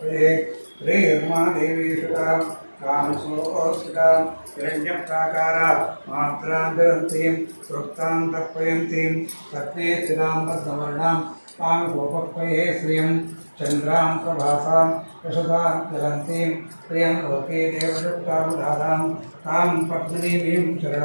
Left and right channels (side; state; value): both; inverted; correlation -1.00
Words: श्रीर्मा देवी सुतां कामसोऽस्मितां हिरण्यप्राकारा मात्रां ददन्तीं वृत्तां तर्पयन्तीं पत्नी स्थितां पद्मवर्णां तां गोपक्वये श्रियं चन्द्रां प्रभासां यशसां ज्वलन्तीं प्रियं लोके देवदत्तामुदारां तां पद्मिनीं